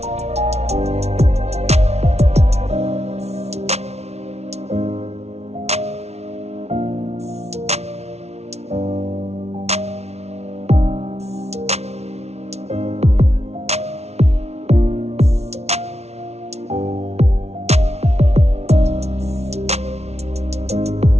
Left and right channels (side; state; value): left; late; 0.31 ms